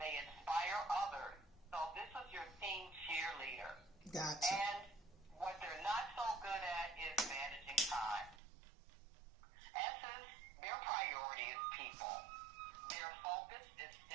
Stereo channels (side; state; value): left; drops out; at 8.4 s